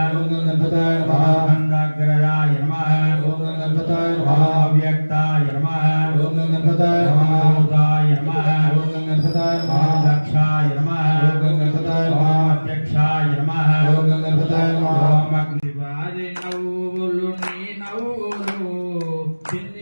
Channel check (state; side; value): inverted; both; correlation -1.00